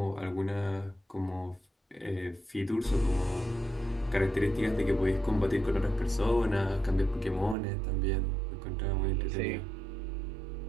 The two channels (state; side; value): drops out; left; at 7.6 s